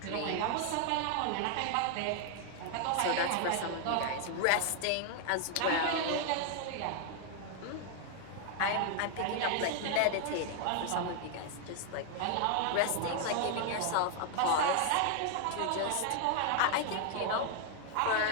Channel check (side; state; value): both; different; correlation 0.00